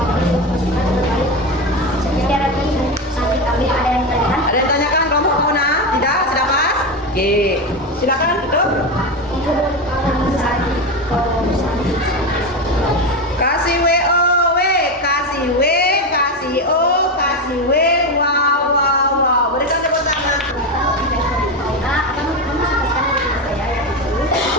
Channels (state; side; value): normal; both; correlation 0.16